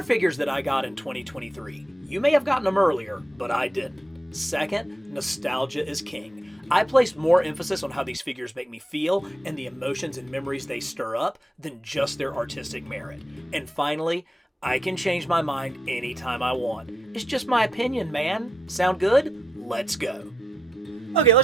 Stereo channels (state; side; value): normal; both; correlation 0.84